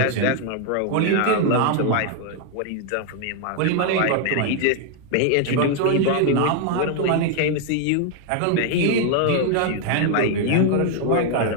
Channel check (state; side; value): different; both; correlation 0.00